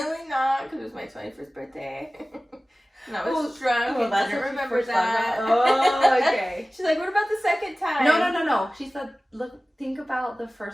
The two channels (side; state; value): both; normal; correlation 0.97